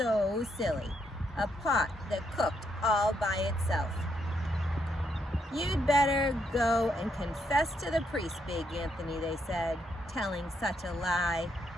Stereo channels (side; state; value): both; normal; correlation 0.77